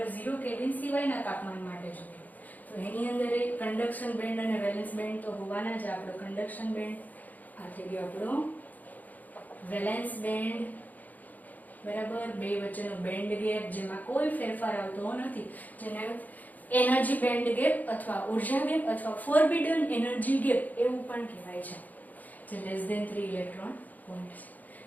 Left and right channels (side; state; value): right; late; 0.080 ms